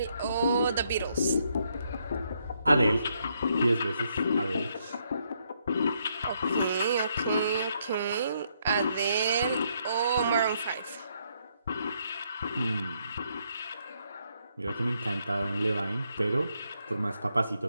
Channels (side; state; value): both; inverted; correlation -0.74